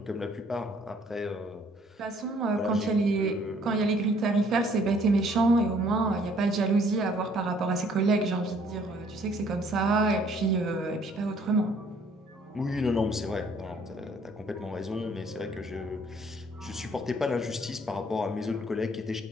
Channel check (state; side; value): normal; both; correlation 0.61